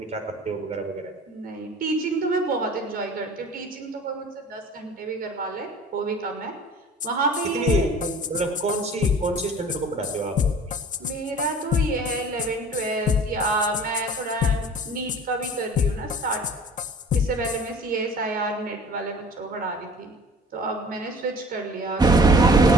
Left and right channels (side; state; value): both; normal; correlation 0.45